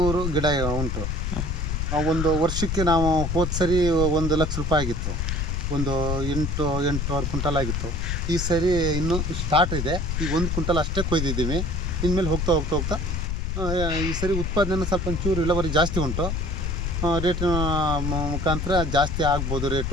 ಗಿಡ ಉಂಟು. ಒಂದು ವರ್ಷಕ್ಕೆ ನಾವು ಹೋದ ಸರಿ 1 ಲಕ್ಷ ರೂಪಾಯಿ ಆಗಿತ್ತು. ಒಂದು 8 ಕ್ವಿಂಟಲ್ ಆಗಿತ್ತು. ಈ ಸರಿ ಇನ್ನೂ ಸ್ಟಾರ್ಟ್ ಇದೆ. ಈಗ 1 ಕ್ವಿಂಟಲ್ ಅಷ್ಟೇ ಕೊಯ್ದಿದ್ದೀವಿ. ಇನ್ಮೇಲೆ ಹೋಗ್ತಾ ಈ ಸರಿ ಉತ್ಪಾದನೆ ಸ್ವಲ್ಪ ಒಂಚೂರು ಇಳುವರಿ ಜಾಸ್ತಿ ಉಂಟು. ರೇಟಿನ ಮುಖಾಂತರ ಜಾಸ್ತಿ ಆಗ್ಬೋದು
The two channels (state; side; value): noise; left; rumble, 1 dB below the sound